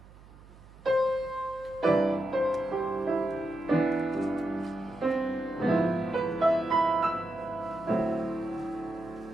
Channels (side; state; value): right; noise; hum, 22 dB below the sound